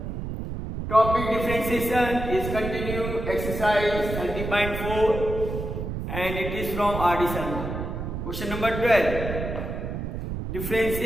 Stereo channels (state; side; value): noise; right; rumble, 5 dB below the sound